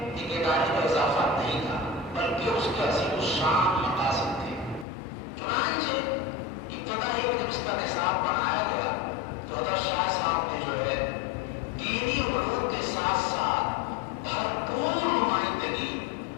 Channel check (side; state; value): right; drops out; at 4.9 s